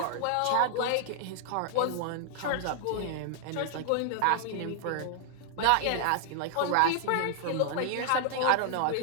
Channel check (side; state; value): both; different; correlation 0.00